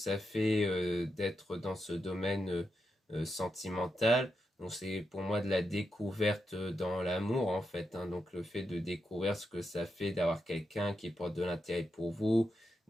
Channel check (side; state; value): both; normal; correlation 0.86